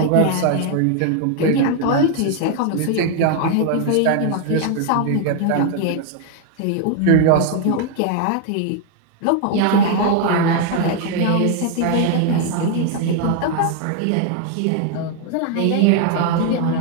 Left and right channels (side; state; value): both; different; correlation 0.00